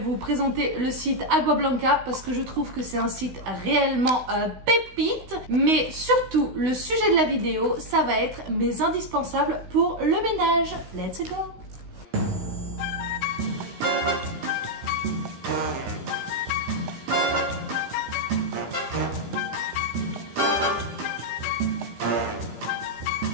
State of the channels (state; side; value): late; left; 16 ms